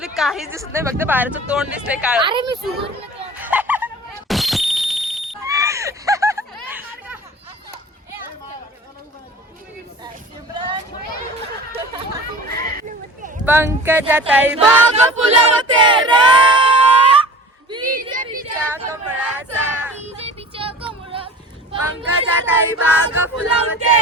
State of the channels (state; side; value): normal; both; correlation 0.39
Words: काहीच दिसत नाही, फक्त बाहेरचं तोंड दिसतंय काळ. अरे मी सुगर पंकजाताई बाग फुलवते रे बीजेपीच्या कमळाचा. पंकजाताई बाग फुलवते